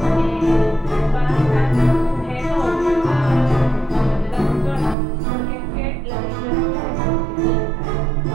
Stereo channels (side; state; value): left; drops out; at 5.0 s